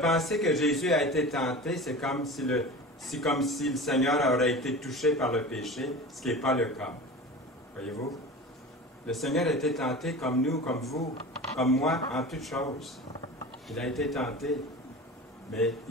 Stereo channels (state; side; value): normal; both; correlation 0.34